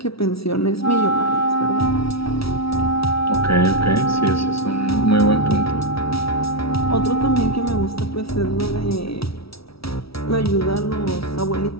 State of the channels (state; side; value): late; right; 0.76 ms